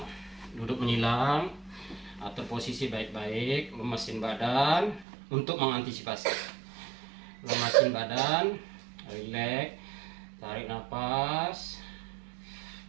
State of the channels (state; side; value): drops out; left; at 5.1 s